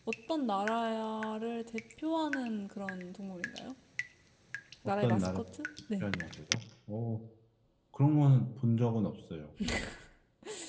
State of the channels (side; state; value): both; identical; correlation 1.00